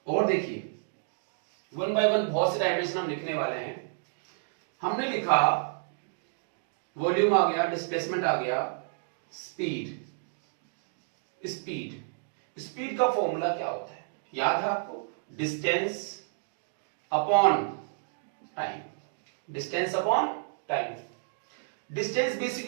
और देखिए वन बाय वन बहुत से डायमेंशन हम लिखने वाले हैं। हमने लिखा वॉल्यूम आ गया, डिस्प्लेसमेंट आ गया, स्पीड, स्पीड, स्पीड का फॉर्मूला क्या होता है? याद है आपको? Distance upon time, distance upon time. Distance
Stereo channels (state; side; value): silent; left; digital silence